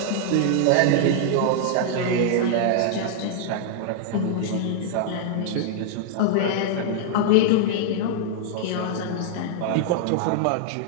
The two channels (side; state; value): both; different; correlation -0.01